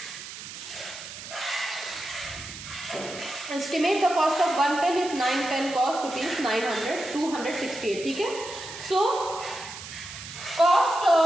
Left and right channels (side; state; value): right; noise; hiss, 12 dB below the sound